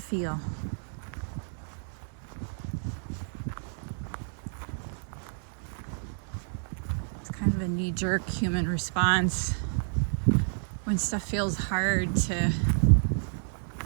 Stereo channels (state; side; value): silent; left; digital silence